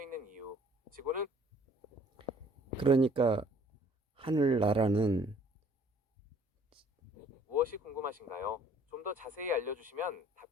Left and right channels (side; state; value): both; normal; correlation 0.57